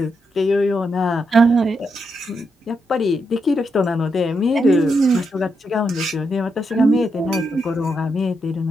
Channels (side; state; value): both; normal; correlation 0.82